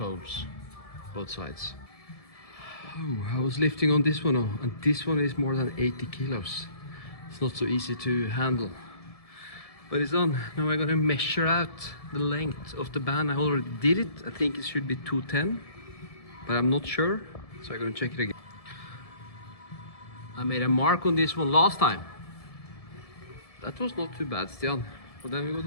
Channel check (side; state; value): right; late; 1.7 ms